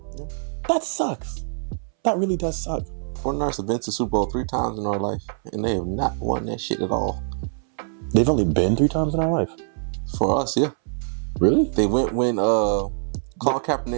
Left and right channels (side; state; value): left; silent; 63 dB below the other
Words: Yeah. That sucks. That really does suck. 49ers have been to Super Bowl 3 times in our life, and they have not won that shit at all. They've only been 3 times in our life? For us, yeah. Really? They went when Colin